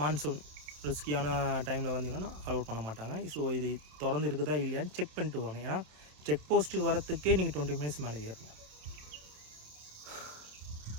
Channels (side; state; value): left; late; 27 ms